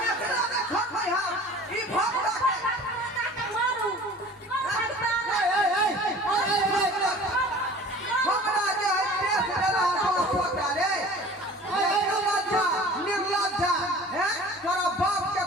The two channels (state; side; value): normal; both; correlation 0.44